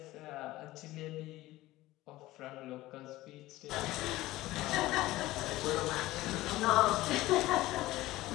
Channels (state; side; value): quieter; right; 17.3 dB